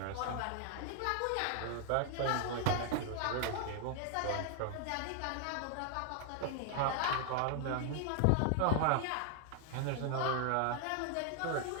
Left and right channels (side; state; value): both; different; correlation 0.00